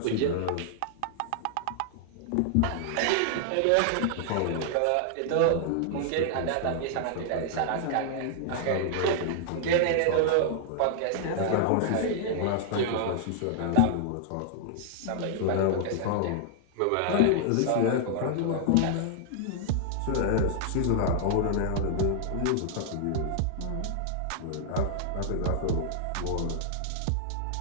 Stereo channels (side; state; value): both; different; correlation -0.01